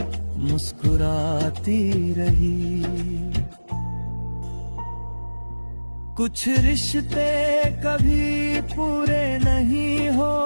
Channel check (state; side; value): inverted; both; correlation -1.00